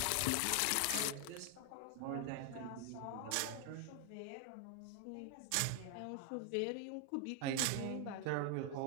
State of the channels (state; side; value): different; both; correlation 0.01